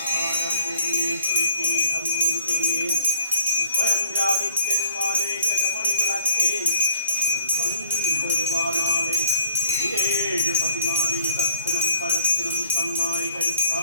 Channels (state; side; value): inverted; both; correlation -0.61